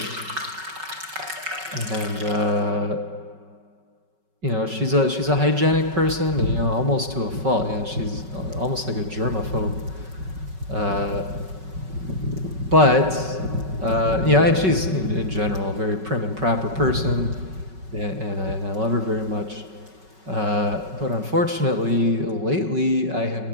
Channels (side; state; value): left; late; 5.3 ms